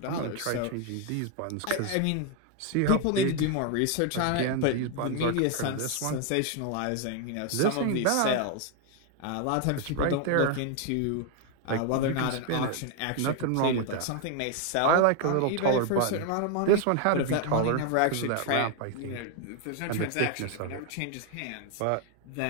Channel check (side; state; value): both; different; correlation 0.01